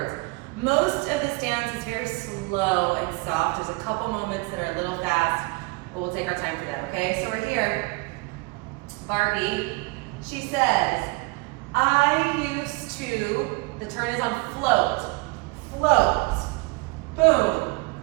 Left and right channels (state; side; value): quieter; left; 26.8 dB